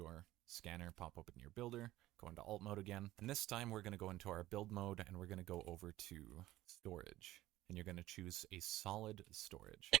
scanner, pop open your builder, go into alt mode again, and this time we're going to go into our build mode and we're going to go over to storage. And you're going to choose a solid storage.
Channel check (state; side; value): quieter; left; 15.9 dB